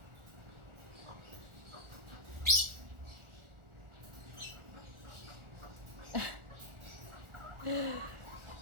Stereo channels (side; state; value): left; late; 1.4 ms